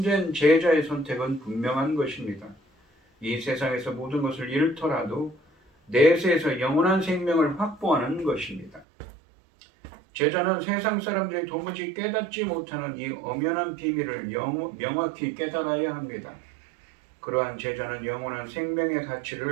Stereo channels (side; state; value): left; drops out; at 8.8 s